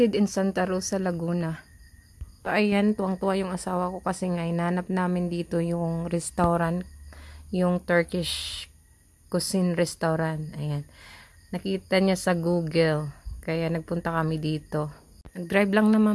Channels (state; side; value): identical; both; correlation 1.00